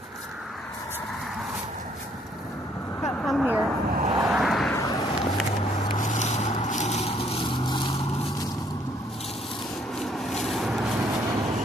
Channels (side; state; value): both; normal; correlation 0.66